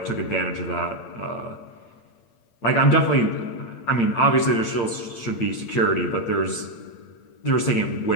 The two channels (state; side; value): late; right; 8.7 ms